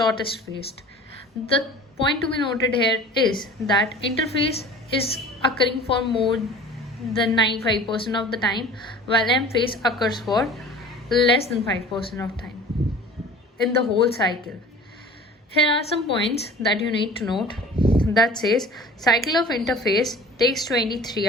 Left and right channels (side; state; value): both; normal; correlation 0.43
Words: phase. The point to be noted here is that interphase is occurring for more than 95% of the time, while M phase occurs for less than 5% of time in the whole cycle. Here are some points that you need to note. That says cycle of interphase takes 23